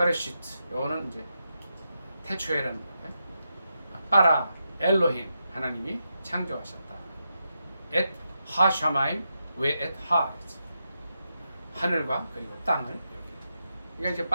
이거는 이제 태초에라는 거예요. 바라 엘로힘 하나님이 창조하셨다. 엣 하샤마임 웨 엣 하르츠. 하늘과 그리고 땅을 이렇게. 그러니까 이제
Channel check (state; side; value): inverted; both; correlation -0.85